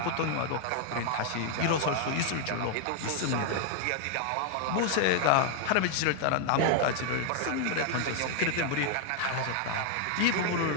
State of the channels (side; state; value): both; different; correlation 0.00